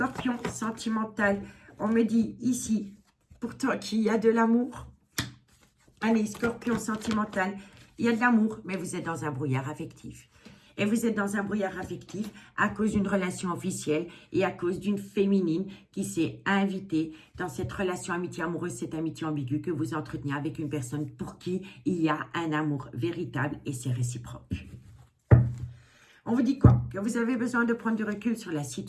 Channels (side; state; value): both; identical; correlation 1.00